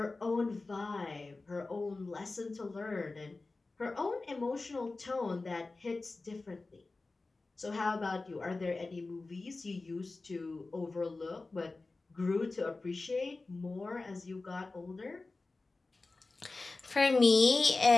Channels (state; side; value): quieter; right; 3.5 dB